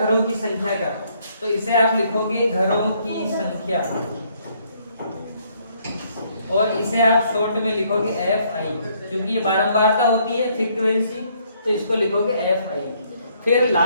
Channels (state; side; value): inverted; both; correlation -0.68